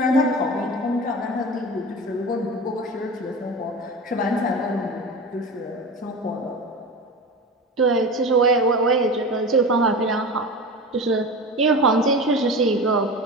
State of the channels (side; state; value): both; normal; correlation 0.30